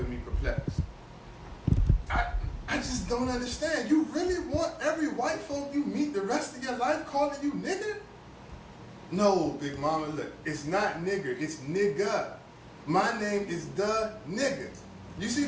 me perplexed. I just don't understand. You really want every white folk you meet the rest of your life calling you nigger? No, Big Mama, look, it's not nigger, it's nigga. My name is the nigga. You see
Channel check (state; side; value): identical; both; correlation 1.00